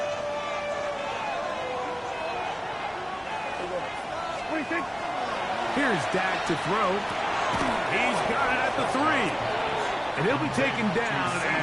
Here's Dak to throw. He's got it at the 3. And he'll be taken down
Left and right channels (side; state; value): both; identical; correlation 1.00